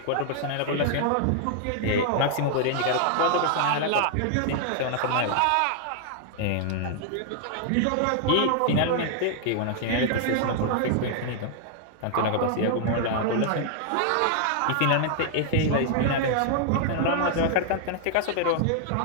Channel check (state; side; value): different; both; correlation 0.00